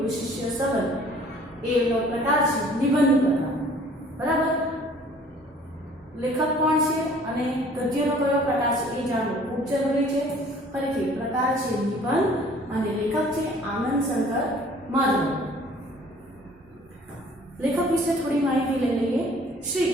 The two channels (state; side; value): normal; both; correlation 0.54